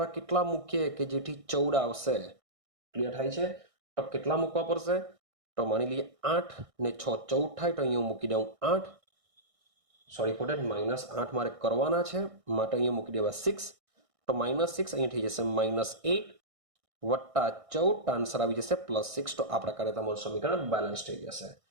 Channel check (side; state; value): left; late; 1.6 ms